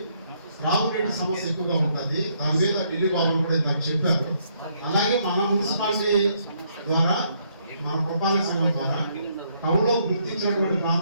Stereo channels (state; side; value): inverted; both; correlation -0.71